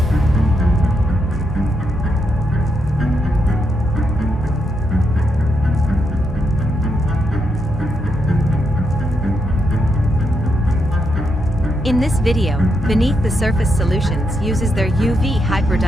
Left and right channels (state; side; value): normal; both; correlation 0.81